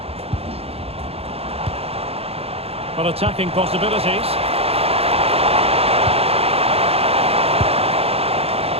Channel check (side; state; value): left; late; 0.29 ms